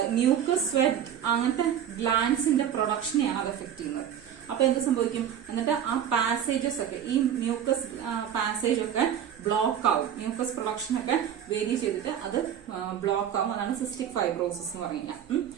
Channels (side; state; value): left; quieter; 9.4 dB